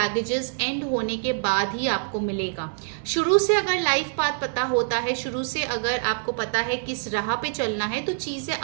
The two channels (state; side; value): silent; left; 62 dB below the other